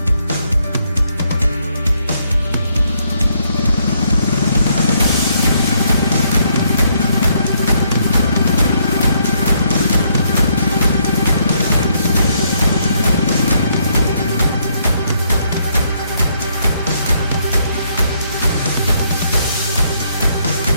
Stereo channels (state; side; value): inverted; both; correlation -0.72